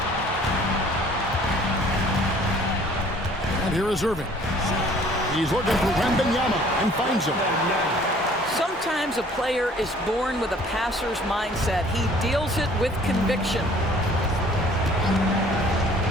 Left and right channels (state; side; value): normal; both; correlation 0.54